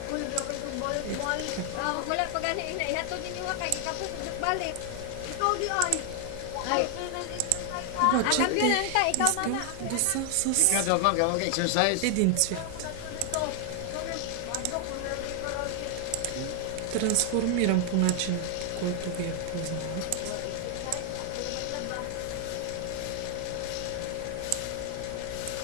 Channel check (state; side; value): different; both; correlation 0.00